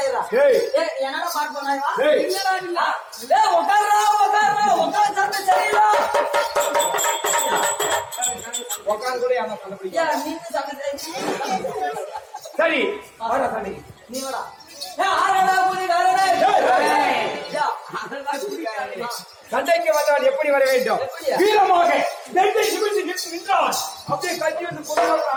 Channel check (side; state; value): both; identical; correlation 1.00